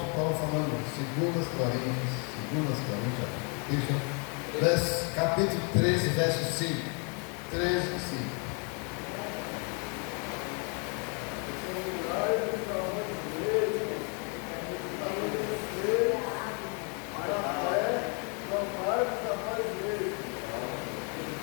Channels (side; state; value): right; quieter; 36.9 dB